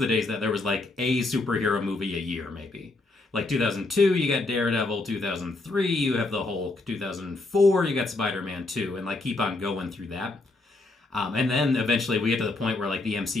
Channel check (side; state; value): right; quieter; 3.2 dB